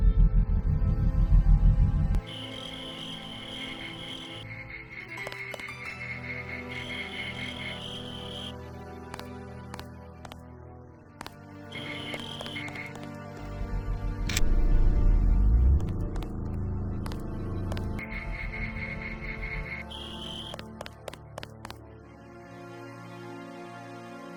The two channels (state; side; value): identical; both; correlation 1.00